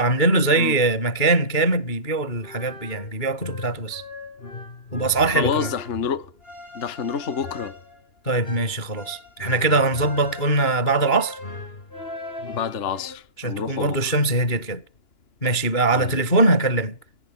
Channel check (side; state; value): right; late; 2.9 ms